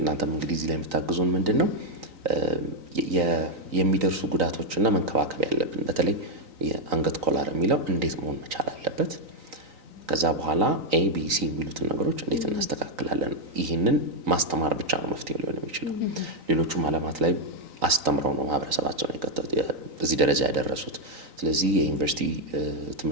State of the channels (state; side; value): late; left; 3.9 ms